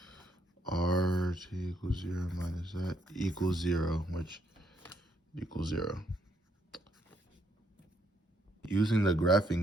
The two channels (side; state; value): both; normal; correlation 0.72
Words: rt equals 0 minus that equals 0, which equals 0. Using the